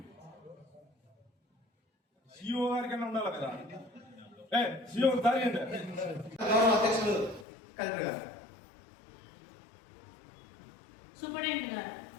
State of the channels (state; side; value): drops out; right; at 7.5 s